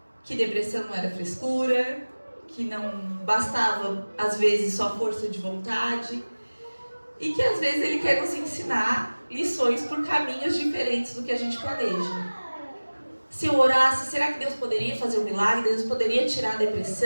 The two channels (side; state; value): both; inverted; correlation -1.00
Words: que depressão não era frescura, que não bastava às vezes só força de vontade, e que às vezes Ele quer nos ensinar lições por caminhos diferentes do que a gente planeja. Se eu orasse, será que Deus poderia fazer um milagre? Deus poderia tirar a